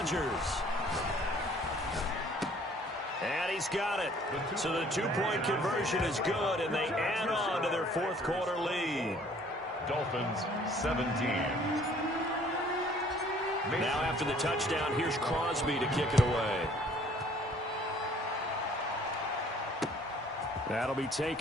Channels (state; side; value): normal; both; correlation 0.56